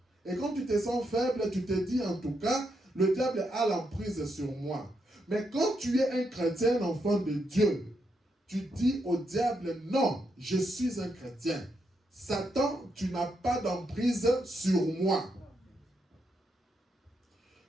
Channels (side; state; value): both; normal; correlation 0.80